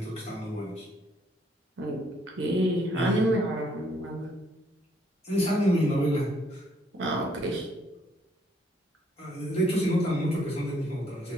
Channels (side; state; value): both; normal; correlation 0.68